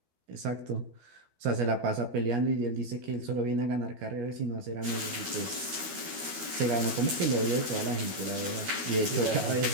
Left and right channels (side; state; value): left; late; 13 ms